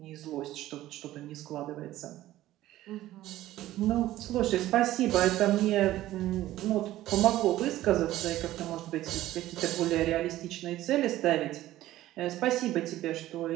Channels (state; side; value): quieter; left; 14.9 dB